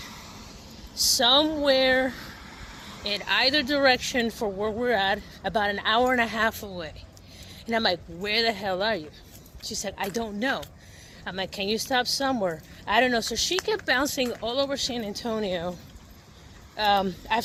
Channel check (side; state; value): both; identical; correlation 1.00